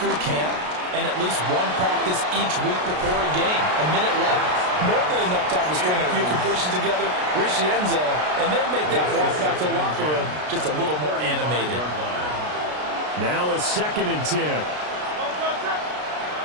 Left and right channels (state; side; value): late; left; 33 ms